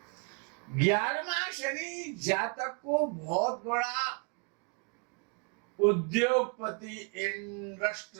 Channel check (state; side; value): quieter; left; 34.0 dB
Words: 11वां शनि जातक को बहुत बड़ा उद्योगपति,